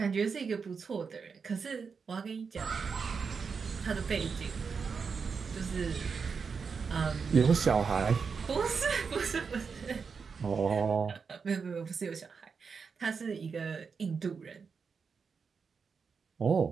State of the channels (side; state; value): left; quieter; 5.6 dB